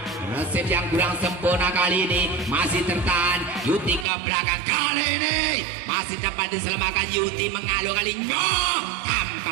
resep yang kurang sempurna kali ini masih tertahan Yuti ke belakang kali ini masih dapat diselamatkan Yuti mengalu kalinya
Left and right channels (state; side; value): drops out; left; at 4.0 s